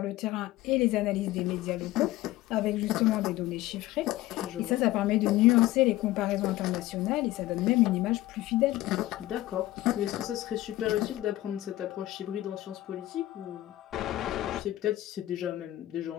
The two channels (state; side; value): quieter; right; 16.2 dB